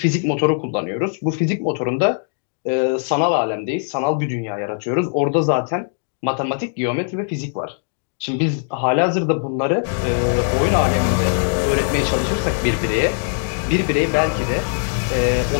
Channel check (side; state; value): right; silent; digital silence